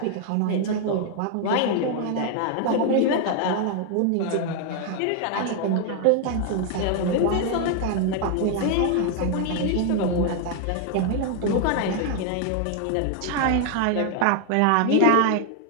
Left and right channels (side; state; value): both; different; correlation 0.00